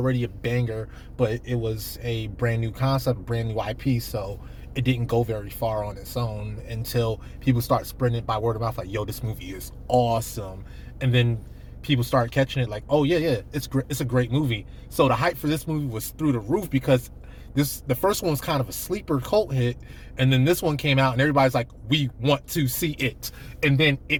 a banger, but it was a brand new concept, brand new IP, so it didn't go very far on its own until people start spreading it by word of mouth, like, yo, this movie is awesome. And then people start catching it like, oh yeah, it's a great movie. So the hype for this movie was through the roof because the first one was kind of a sleeper cult hit, and then this one came out and everybody's like, we want to see it. And then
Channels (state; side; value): identical; both; correlation 1.00